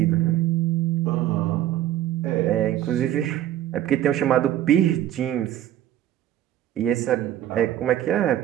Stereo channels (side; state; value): left; quieter; 12.4 dB